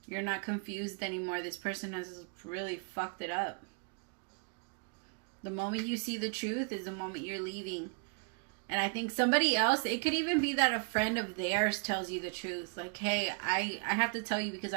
You're not confused anymore. This person has really fucked it up. The moment you see the truth is the moment you're leaving. And I think somebody else, it could even be that a friend of theirs tells you the truth. Like, hey, I have to tell you because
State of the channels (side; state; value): left; quieter; 39.1 dB